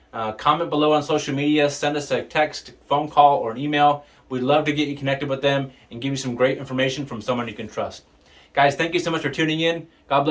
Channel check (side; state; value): both; identical; correlation 1.00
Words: comment below on social media, send us a text, phone call, or an email. We'd love to get you connected with them and give you some great information from someone you can trust. Guys, thank you so much for tuning in. God